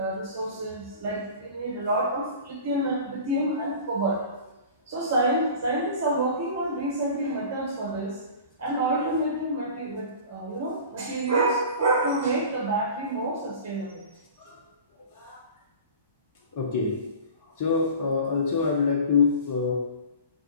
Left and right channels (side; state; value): both; inverted; correlation -0.38